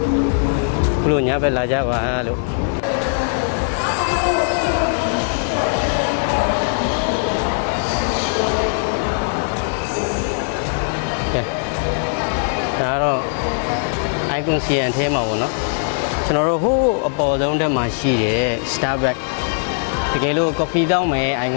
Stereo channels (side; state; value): right; silent; digital silence